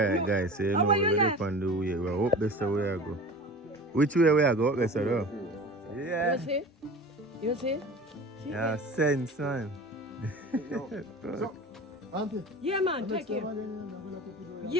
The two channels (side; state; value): both; normal; correlation 0.37